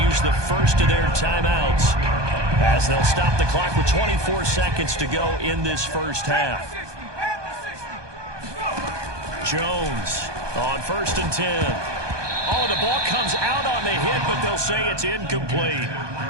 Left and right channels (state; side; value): late; left; 1.2 ms